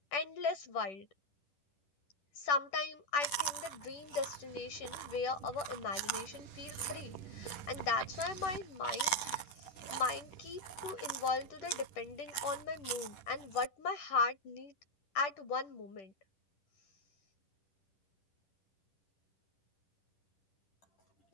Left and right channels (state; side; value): late; right; 10 ms